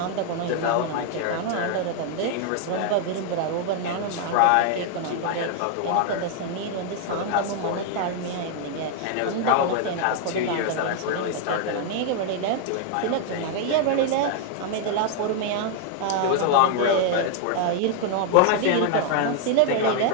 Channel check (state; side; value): different; both; correlation 0.00